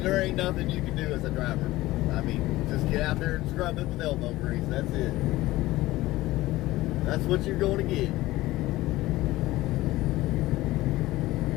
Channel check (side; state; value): right; quieter; 17.6 dB